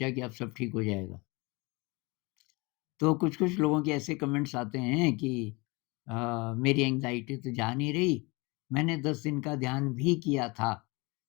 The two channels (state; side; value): quieter; right; 26.5 dB